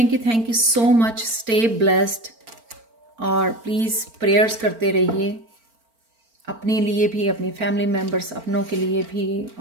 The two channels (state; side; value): late; left; 4.4 ms